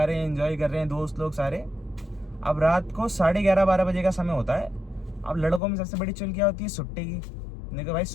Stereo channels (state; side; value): drops out; right; at 5.6 s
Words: रहे हैं, एंजॉय कर रहे हैं दोस्त लोग सारे। अब रात को 11:30-12 बजे का समय होता है। अब लड़कों में सबसे बड़ी चुल क्या होती है? सुट्टे की। मैंने कहा भाई